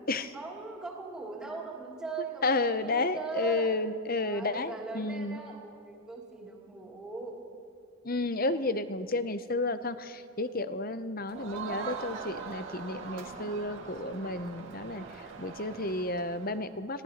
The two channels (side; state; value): both; normal; correlation 0.01